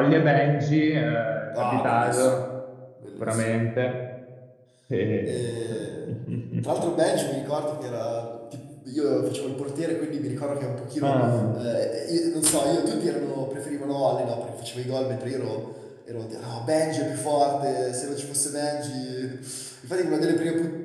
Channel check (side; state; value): both; identical; correlation 1.00